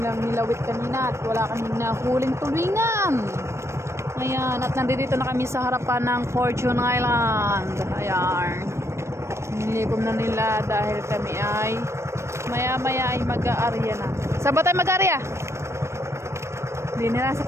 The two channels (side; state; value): left; late; 0.13 ms